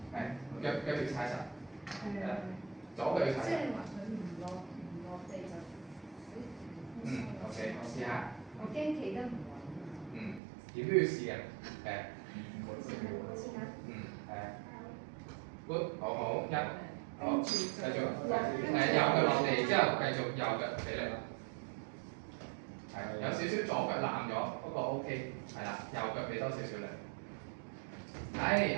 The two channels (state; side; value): drops out; left; at 10.4 s